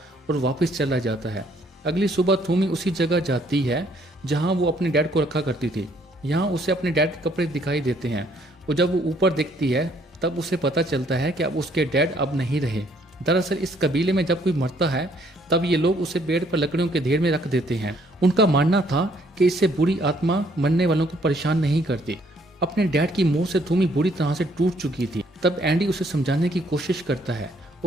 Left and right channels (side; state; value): both; normal; correlation 0.66